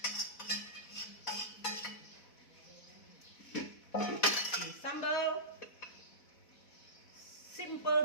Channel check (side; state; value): right; late; 4.1 ms